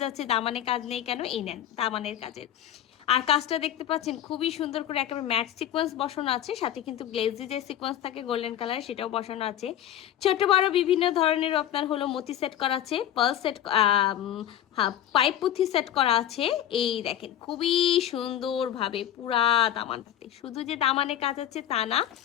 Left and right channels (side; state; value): right; quieter; 11.3 dB